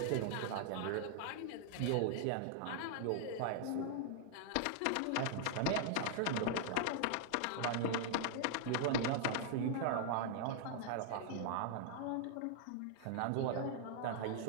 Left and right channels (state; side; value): different; both; correlation -0.01